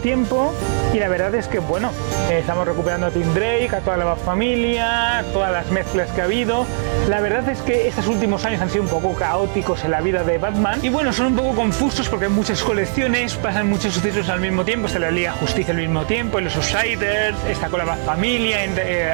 y la verdad es que bueno, estamos recuperando a Tim Drake, a toda la familia, todas las mezclas que ha habido. La verdad es que estos últimos años han sido un poco caóticos en la vida de Batman, y bueno, son un poco confusos porque hay muchas colecciones, pasan muchos sucesos al mismo tiempo, está la Liga de Justicia al mismo tiempo, en los Outsiders, está con la familia,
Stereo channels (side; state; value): left; silent; digital silence